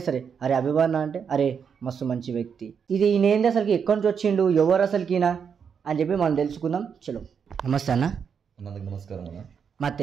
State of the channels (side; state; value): left; quieter; 6.9 dB